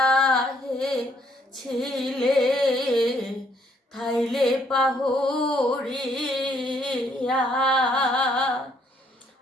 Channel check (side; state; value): both; normal; correlation 0.68